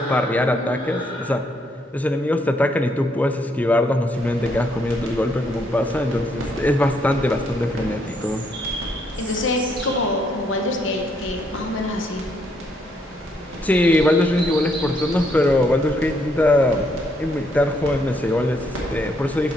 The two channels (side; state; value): both; normal; correlation 0.72